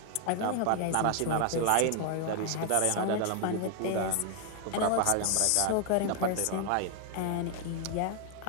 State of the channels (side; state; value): both; different; correlation 0.00